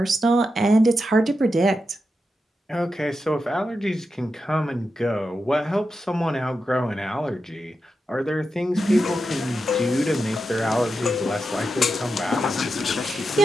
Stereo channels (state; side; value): normal; both; correlation 0.88